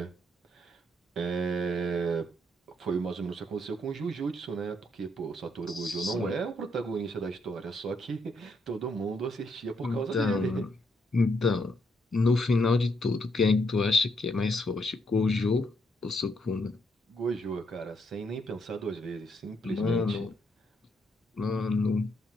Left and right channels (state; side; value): normal; both; correlation 0.75